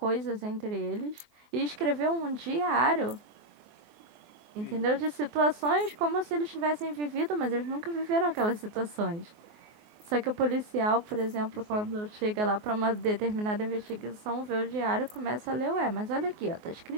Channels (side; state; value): left; late; 24 ms